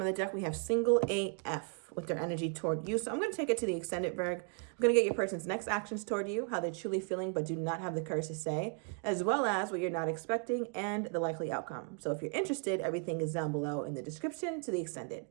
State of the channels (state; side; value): quieter; left; 39.9 dB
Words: the deck, we have single AF with their energy toward you. So I'm going to take it to the extended, Virgo. I'm going to get your person's next actions toward you, how they're truly feeling but do not have the courage to say, as well as what you're not expecting and the likely outcome. So if you're interested, everything is down below in the description to the extended.